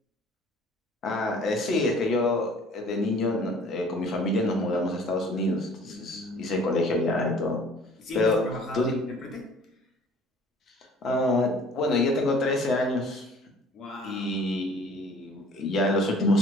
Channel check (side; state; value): both; normal; correlation 0.52